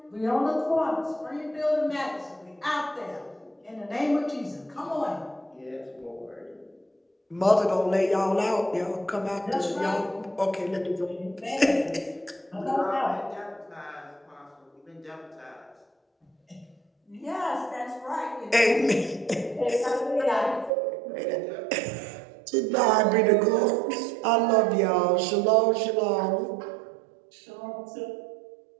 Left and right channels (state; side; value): drops out; left; at 20.7 s